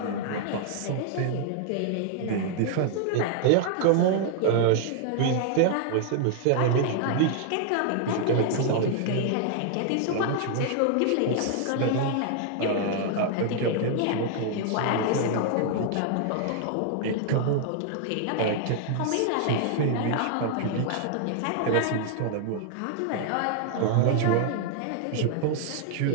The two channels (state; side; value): different; both; correlation 0.00